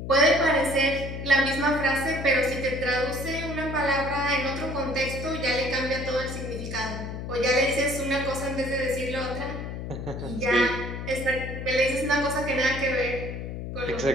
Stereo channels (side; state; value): left; noise; hum, 7 dB below the sound